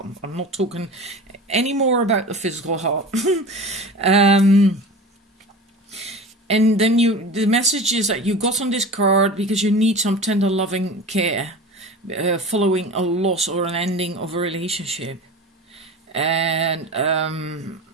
I'm not talking any more about the physical heart. And then the message is that you got on this card because you need some tender loving care following a loss or an ending of a relationship. And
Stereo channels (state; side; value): normal; both; correlation 0.34